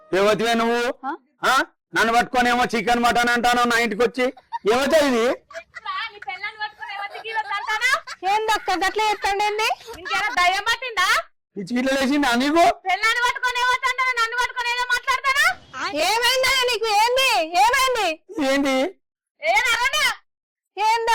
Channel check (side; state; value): both; identical; correlation 1.00